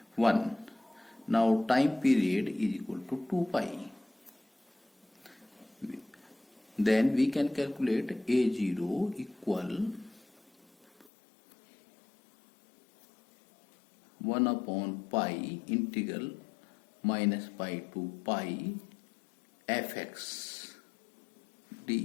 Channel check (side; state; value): right; drops out; at 11.1 s